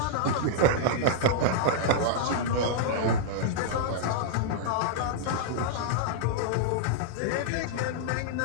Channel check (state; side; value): different; both; correlation -0.01